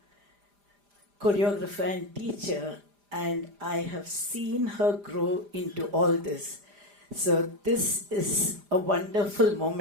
choreographer, and teacher, and I have seen her grow into all this. So, this is a wonderful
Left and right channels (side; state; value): left; late; 4.9 ms